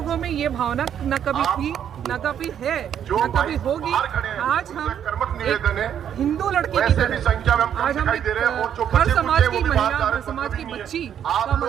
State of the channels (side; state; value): left; quieter; 9.3 dB